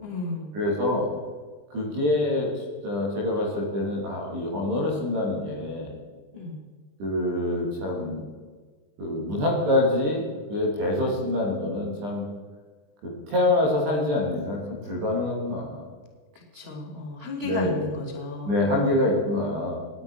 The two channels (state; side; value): late; left; 20 ms